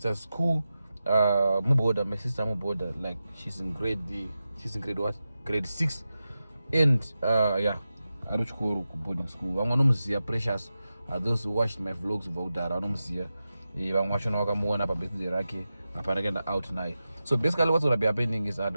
school. My sister Muboda, like she's in grade what? Grade 6. And yeah, I don't go to boarding school. I'm gonna see precious. Those who watched my vlogs about that, I'm gonna see. I'm watching Wakamuana Babeti Raki, Aparagenda out now. So basically what's gonna be happening is I'm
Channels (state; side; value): inverted; both; correlation -0.92